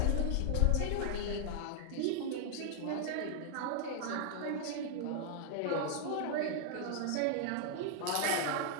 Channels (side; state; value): both; different; correlation -0.01